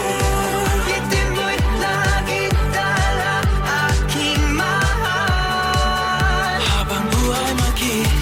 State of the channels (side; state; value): both; identical; correlation 1.00